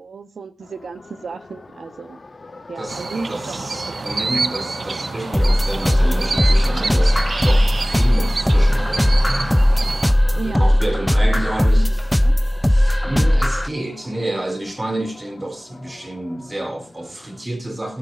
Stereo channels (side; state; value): both; normal; correlation 0.98